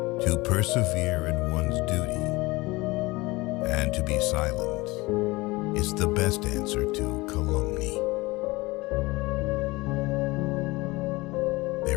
To persevere in one's duty and to be silent is the best answer to calumny.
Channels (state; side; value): quieter; right; 22.1 dB